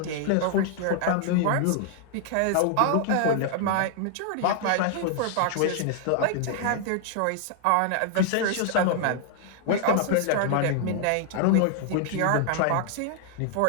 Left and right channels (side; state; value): both; different; correlation 0.00